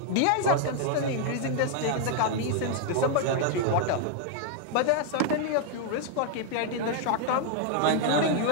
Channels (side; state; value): both; different; correlation 0.00